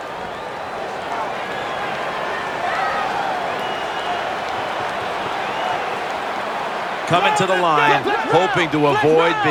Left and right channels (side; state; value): both; identical; correlation 1.00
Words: Coming to the line, hoping to avoid